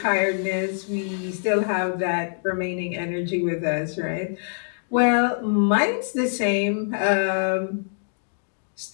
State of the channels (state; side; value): silent; right; digital silence